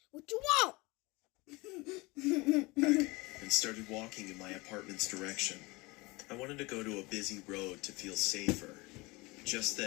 What you want? And started walking in my apartment's direction. I wanted to go to a busy road to feel safer. Just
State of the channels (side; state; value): right; quieter; 24.0 dB